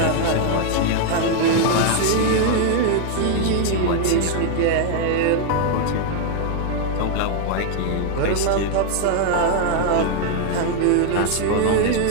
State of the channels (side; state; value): both; different; correlation 0.00